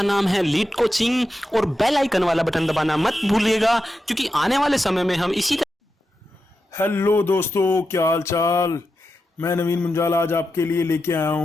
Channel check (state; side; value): normal; both; correlation 0.89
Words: नाम है लीड कोचिंग और बेल आइकन वाला बटन दबाना मत भूलिएगा क्योंकि आने वाले समय में हम इसी हेलो दोस्तों, क्या हाल चाल। मैं नवीन मुंजाल आज आपके लिए लेके आया